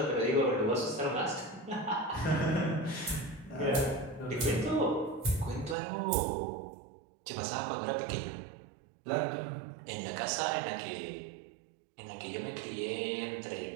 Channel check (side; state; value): left; drops out; at 5.8 s